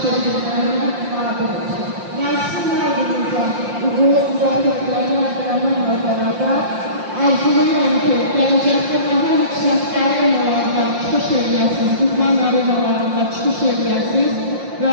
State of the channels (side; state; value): left; late; 5.7 ms